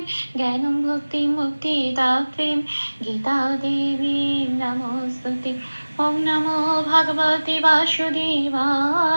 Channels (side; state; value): both; inverted; correlation -1.00